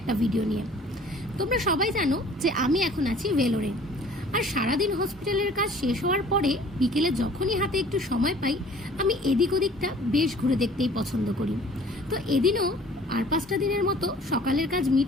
ভিডিও নিয়ে। তোমরা সবাই জানো যে আমি এখন আছি ভেলোরে, আর সারাদিন হসপিটালের কাজ শেষ হওয়ার পরে বিকেলে যখনই হাতে একটু সময় পাই আমি এদিক ওদিকটা বেশ ঘুরে দেখতেই পছন্দ করি। তো এদিনও আর 5টা দিনের মতো সকালের কাজ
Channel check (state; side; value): normal; both; correlation 0.51